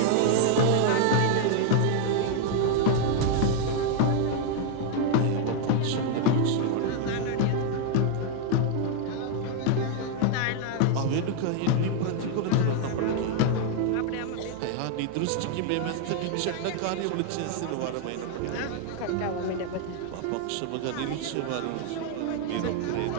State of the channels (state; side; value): different; both; correlation 0.00